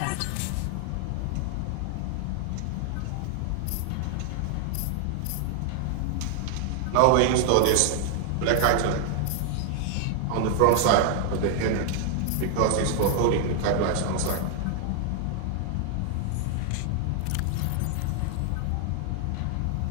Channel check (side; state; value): both; different; correlation 0.00